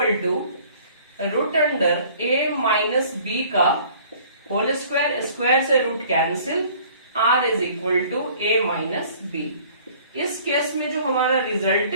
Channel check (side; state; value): both; inverted; correlation -0.53